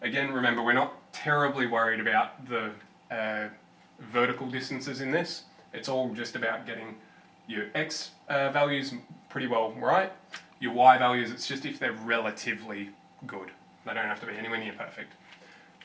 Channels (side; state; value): both; identical; correlation 1.00